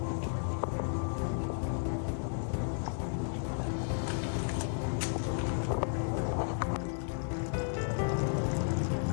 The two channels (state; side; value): silent; right; digital silence